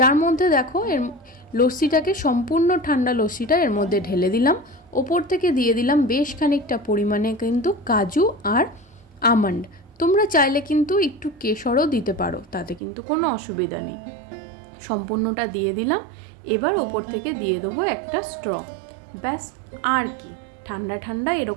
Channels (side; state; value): left; drops out; at 12.8 s